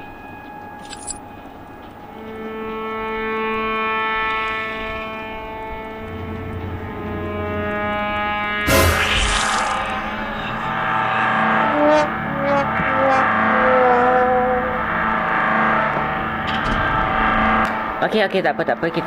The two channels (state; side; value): identical; both; correlation 1.00